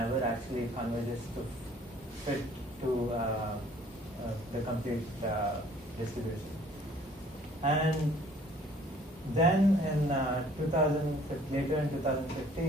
actually converges to fit to the complete distribution. And then in later in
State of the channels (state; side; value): normal; both; correlation 0.56